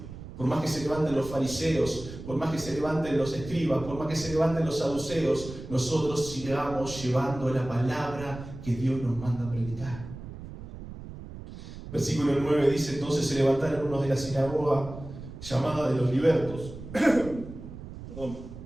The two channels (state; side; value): noise; right; rumble, 12 dB below the sound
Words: Por más que se levanten los fariseos, por más que se levanten los escribas, por más que se levanten los saduceos, nosotros sigamos llevando la palabra que Dios nos manda a predicar. Versículo 9 dice: entonces se levantaron unos de la sinagoga llamada de los libertos,